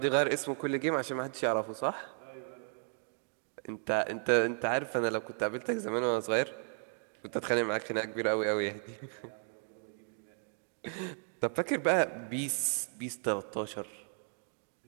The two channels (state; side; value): silent; left; 55 dB below the other